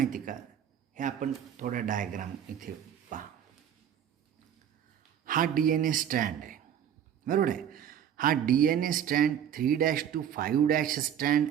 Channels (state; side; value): quieter; left; 9.4 dB